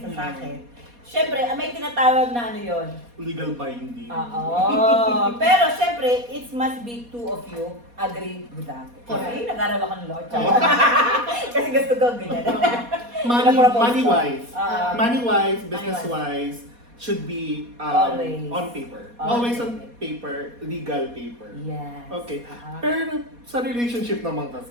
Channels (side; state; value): left; late; 4.2 ms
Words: sa akin. Siyempre, may tinatawag na ano yon. Legal binding. Oo. Pero siyempre, it must be two of you agree with that. Kasi nag-aral ako ng law. Kasi gusto ko ganyan. Money-wise. Ah. Money-wise, business-wise, should be Always. on paper. Always. Always on paper, legal paper. Yes. Okay. Ah. Pero sa relationship naman